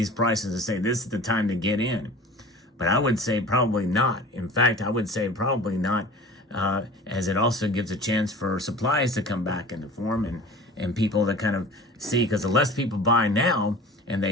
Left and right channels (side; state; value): both; normal; correlation 0.40